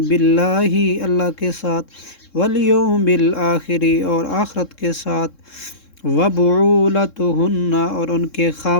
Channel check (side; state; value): right; late; 3.7 ms